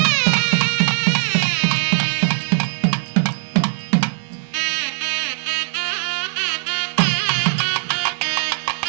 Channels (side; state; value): left; silent; digital silence